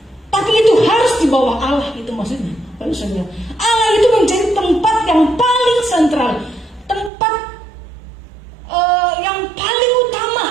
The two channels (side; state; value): left; drops out; at 7.1 s